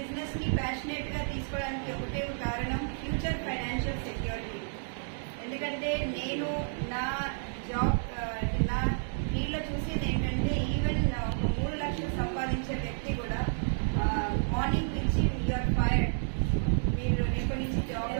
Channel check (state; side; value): silent; left; digital silence